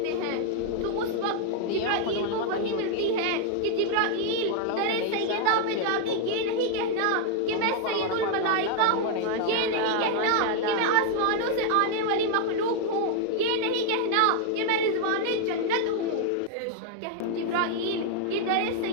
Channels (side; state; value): both; different; correlation 0.00